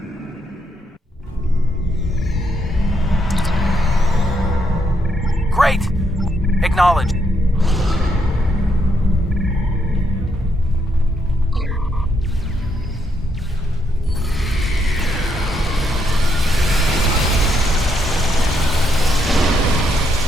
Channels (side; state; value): both; normal; correlation 0.76